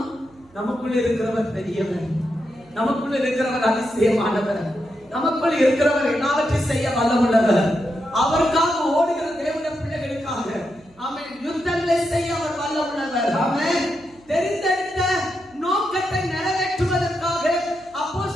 நமக்குள்ள இருக்கிறவர் பெரியவர், நமக்குள்ள இருக்கிறவர் அதிசயமானவர், நமக்குள்ள இருக்கிறவர் எல்லாவற்றையும் செய்ய வல்லமுள்ளவர். அவருக்காக ஓடுகிற தேவனுடைய பிள்ளைகளுக்காக, ஆமென், யுத்தங்களை செய்ய அவர் வல்லமுள்ளவர். ஆமென். தெரிந்தெடுத்த நோக்கத்தை நிறைவேற்றுவதற்காக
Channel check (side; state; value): right; noise; hum, 29 dB below the sound